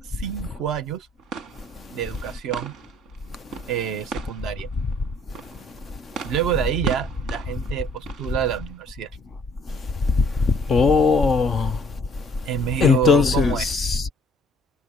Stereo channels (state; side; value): normal; both; correlation 0.59